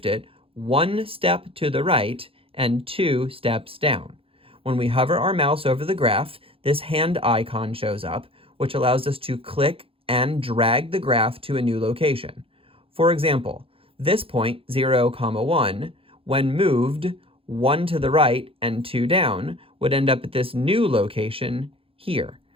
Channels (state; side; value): late; left; 0.27 ms